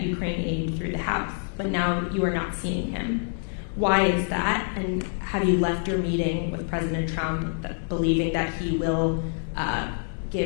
Ukraine aid through the House, but now you are not seeing him. Why is that? And have you left your meeting with President Trump believing that he will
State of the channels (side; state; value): right; silent; digital silence